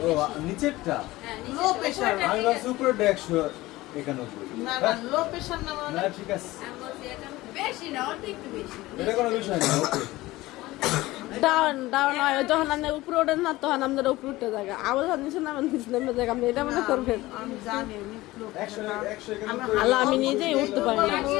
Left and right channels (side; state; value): right; quieter; 18.6 dB